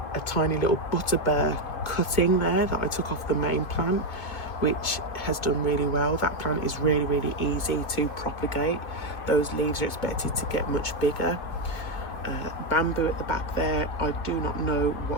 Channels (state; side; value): late; right; 1.9 ms